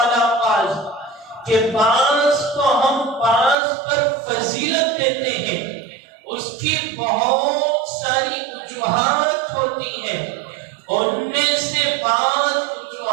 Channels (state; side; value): drops out; left; at 3.6 s